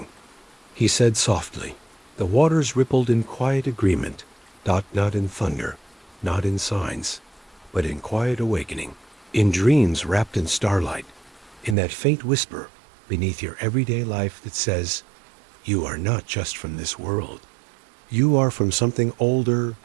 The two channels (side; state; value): left; drops out; at 11.8 s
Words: he said softly. The waters rippled in quiet agreement, not in thunder, not in signs, but in quiet awakening, in dreams wrapped in starlight, in that faint whisper beneath your everyday life that says, "You are not just from this world. You are from something older,